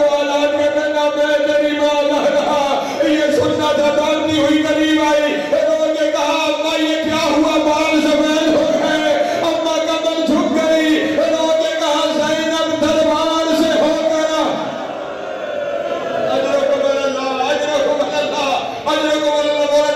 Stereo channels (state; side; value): identical; both; correlation 1.00